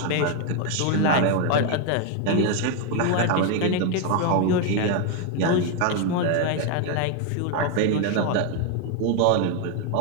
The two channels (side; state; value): both; different; correlation 0.01